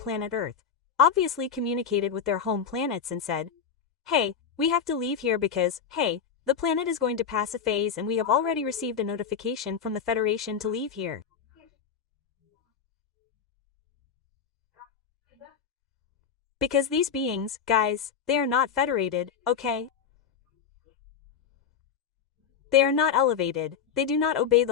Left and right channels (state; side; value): quieter; right; 7.1 dB